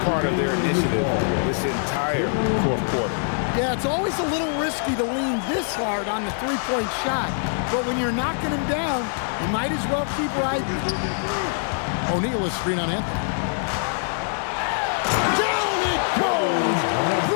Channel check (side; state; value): right; silent; 63 dB below the other